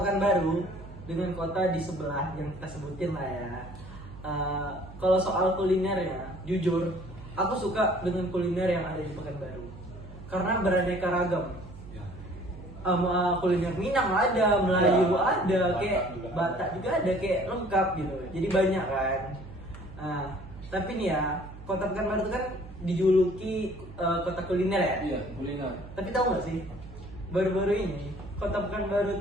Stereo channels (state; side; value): noise; right; hum, 15 dB below the sound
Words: dengan kota di sebelah yang kita sebutin lah ya. Kalau soal kulinernya, jujur, aku suka dengan kuliner yang ada di Pekanbaru karena beraneka ragam. Kuliner Minang ada, Melayu Ya, ada, Batak kayak juga ada. Batak juga ada, kayak lengkap gitu. Jadi banyak kan. Tapi nih ya, Kota Pekanbaru itu kan dijuluki kota kuliner ya. Iya, kuliner. Tapi tahu nggak sih, baru-baru ini Kota Pekanbaru